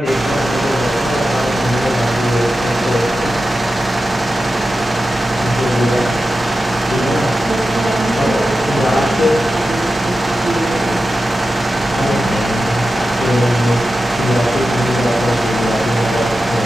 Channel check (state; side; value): normal; both; correlation 0.92